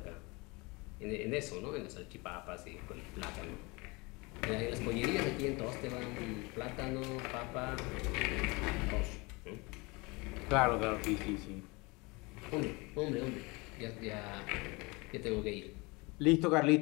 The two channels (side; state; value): right; quieter; 26.2 dB